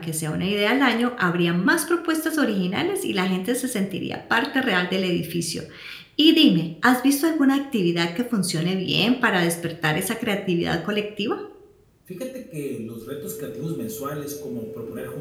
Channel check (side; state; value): both; identical; correlation 1.00